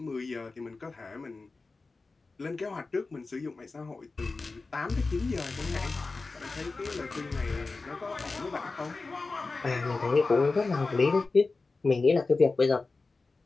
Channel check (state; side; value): quieter; right; 3.8 dB